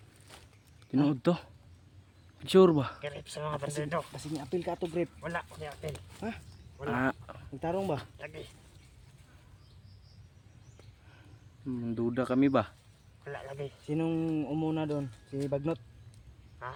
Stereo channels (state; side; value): identical; both; correlation 1.00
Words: Tinood to. Sure ba? Kirip sa mga bandido. Kasi ni-apil ka to grip. Wala. Hindi apel. Ha? Wala. Ah, Nagtarong ba? Lagi. duda kami ba? Wala lagi. Sinong umuna doon? Si Bagnot? Ha?